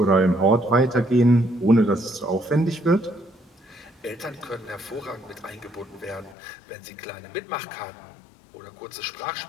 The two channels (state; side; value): drops out; right; at 6.4 s